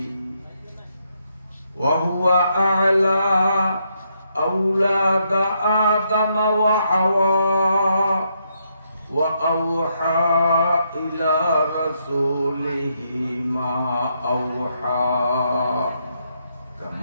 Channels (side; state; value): both; inverted; correlation -0.77